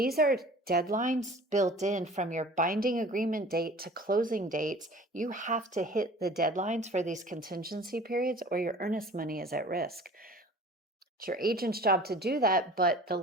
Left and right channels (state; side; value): normal; both; correlation 0.44